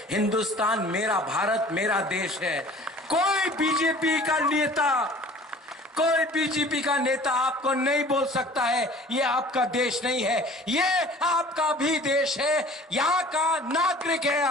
हिंदुस्तान मेरा भारत मेरा देश है। कोई बीजेपी का नेता आपको नहीं बोल सकता है ये आपका देश नहीं है, ये आपका भी देश है, यहां का नागरिक है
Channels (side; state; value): both; normal; correlation 0.47